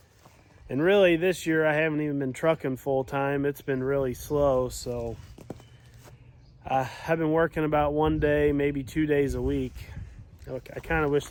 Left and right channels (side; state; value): both; identical; correlation 1.00